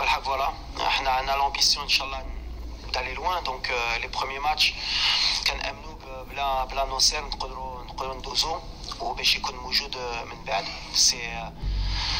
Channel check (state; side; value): identical; both; correlation 1.00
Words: فوالا احنا عندنا لامبيسيون ان شاء الله d'aller loin. دونك لي بروميي ماتش كنامنوا بلا ناصر نقدروا ندوزو وباش يكون موجود من بعد. سي